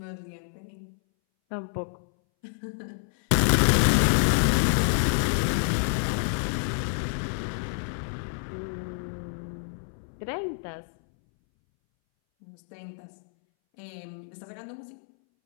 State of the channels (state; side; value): silent; right; 59 dB below the other